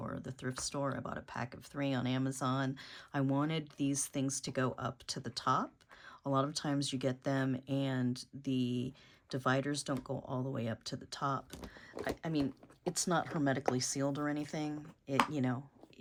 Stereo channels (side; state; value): both; identical; correlation 1.00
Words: or the thrift store. I bought a pack of 3 on Amazon. I wanted these things to go up to the top. A lot of times you get them and the dividers don't go all the way up to the top. I mean, it's not hermetically sealed or anything.